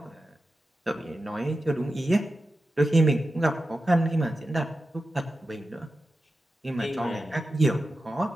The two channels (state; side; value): normal; both; correlation 0.92